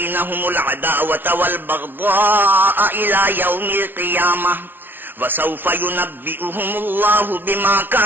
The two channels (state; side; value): late; left; 0.097 ms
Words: العداوة والبغضاء إلى يوم القيامة وسوف ينبئهم الله بما